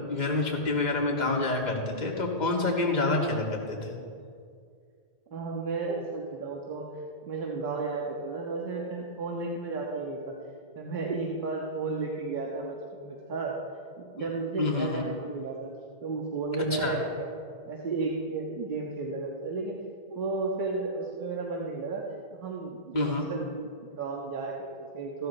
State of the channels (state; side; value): late; right; 2.1 ms